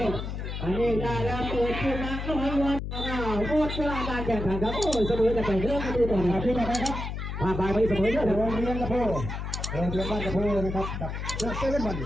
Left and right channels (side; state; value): left; noise; hum, 5 dB below the sound